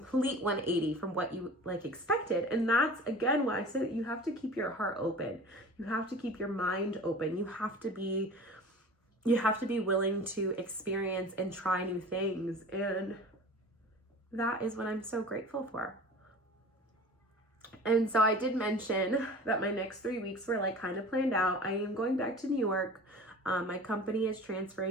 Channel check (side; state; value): both; normal; correlation 0.40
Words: 180 from what you like expected. And that's, again, why I say that you have to keep your heart open. You have to keep your mind open. You have to be willing to experience and try new things. And that is what I'm so grateful for. And so I did mention that my next 3 weeks were like kind of planned out. I am going back to New York. My company is